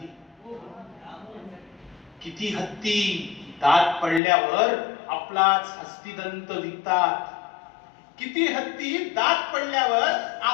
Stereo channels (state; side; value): drops out; right; at 4.2 s